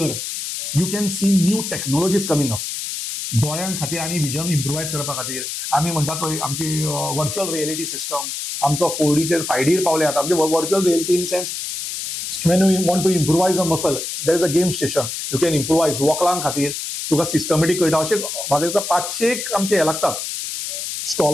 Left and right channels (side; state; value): left; noise; hiss, 5 dB below the sound